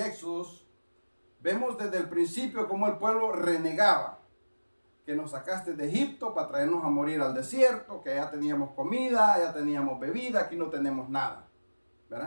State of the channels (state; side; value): inverted; both; correlation -1.00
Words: Éxodos, vemos desde el principio cómo el pueblo renegaba. Que nos sacaste de Egipto para traernos a morir al desierto, que ya teníamos comida, ya teníamos bebida, aquí no tenemos nada,